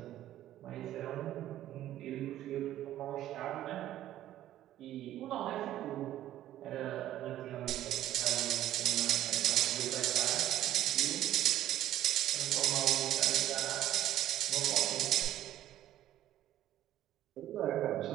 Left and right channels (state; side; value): quieter; left; 13.1 dB